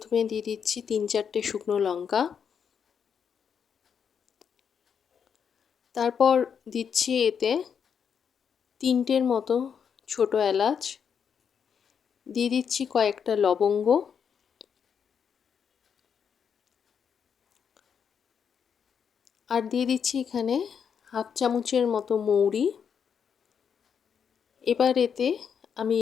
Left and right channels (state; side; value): quieter; right; 7.2 dB